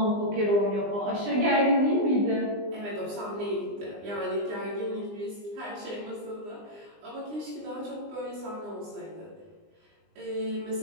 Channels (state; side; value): late; left; 20 ms